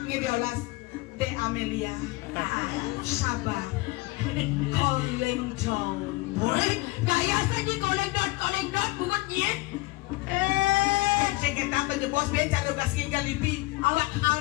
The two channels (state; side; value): quieter; right; 21.9 dB